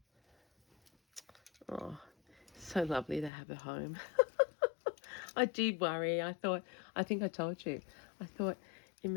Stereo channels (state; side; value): drops out; right; at 3.3 s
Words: Oh, so lovely to have a home. I did worry. I think I told you. I thought,